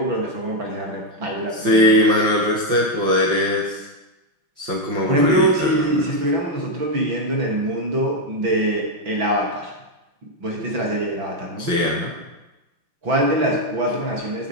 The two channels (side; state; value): left; late; 5.7 ms